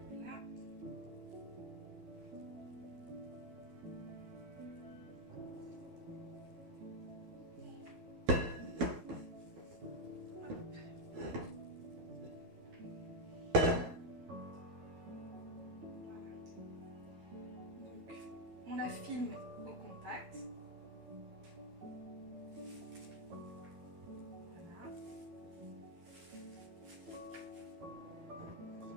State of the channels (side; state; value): left; late; 12 ms